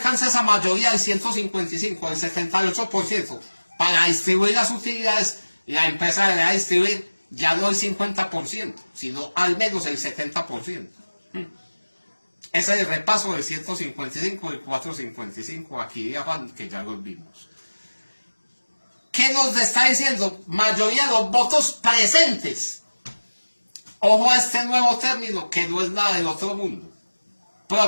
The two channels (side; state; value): both; inverted; correlation -1.00